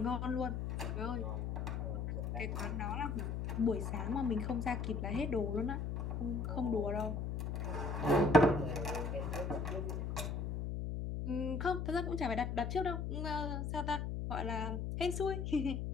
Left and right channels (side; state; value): left; noise; hum, 2 dB below the sound